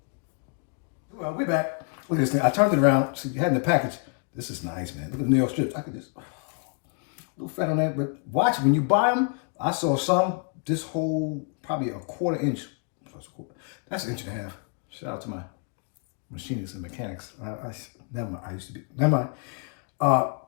Well, we're back. Look at this thing. I turned it around. See, you had in the package. This is nice, man. Look at the New York strips. I could just, a little fat on that. But watch, when you buy them, I saw some, this whole, probably a quarter inch. That's an inch and a half. Shout out to my machinists and mechanics. Never mind. I used to be, never mind.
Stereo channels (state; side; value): quieter; right; 38.1 dB